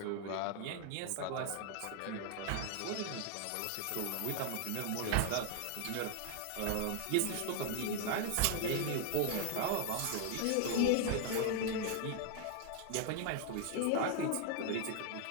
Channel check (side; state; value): both; different; correlation 0.00